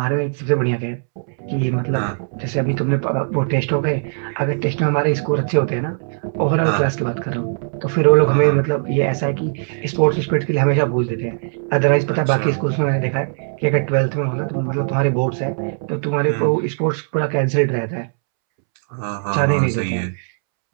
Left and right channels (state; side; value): silent; left; 66 dB below the other